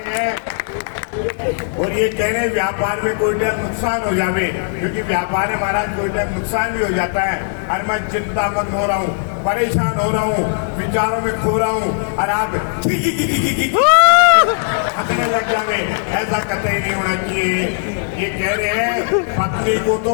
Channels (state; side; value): silent; right; 61 dB below the other